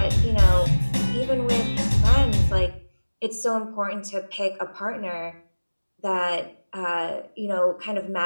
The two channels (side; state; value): both; inverted; correlation -1.00